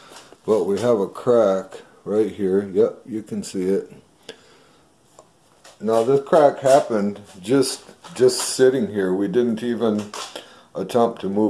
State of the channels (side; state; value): both; identical; correlation 1.00